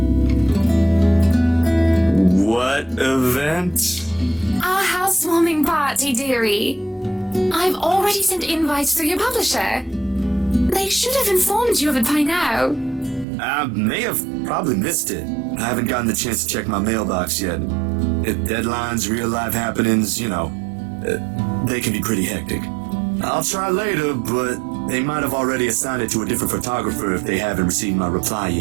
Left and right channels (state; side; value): drops out; left; at 13.2 s